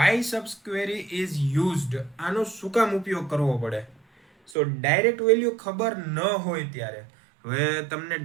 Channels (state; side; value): drops out; left; at 4.5 s